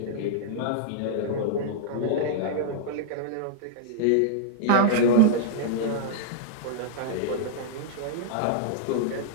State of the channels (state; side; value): different; both; correlation -0.01